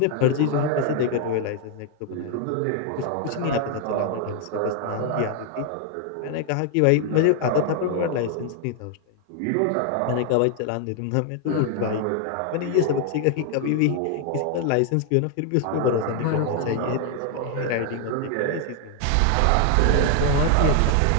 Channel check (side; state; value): both; different; correlation 0.00